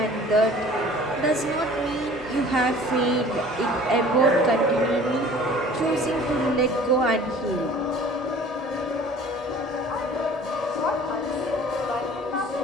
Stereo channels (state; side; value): normal; both; correlation 0.48